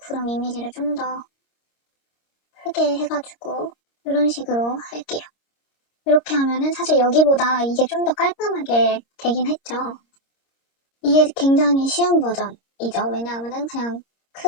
이미지를 좀 더 크게 해가지고 이런 식으로 할게요. 이렇게 하면은 사실 여기보다 이게 좀 더 깔끔하게 되긴 했죠. 이게 굉장히 쉬운 버전이죠. 왜냐하면은 그냥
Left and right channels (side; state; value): right; late; 26 ms